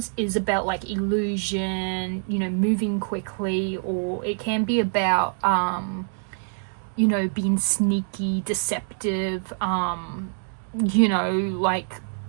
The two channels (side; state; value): left; silent; digital silence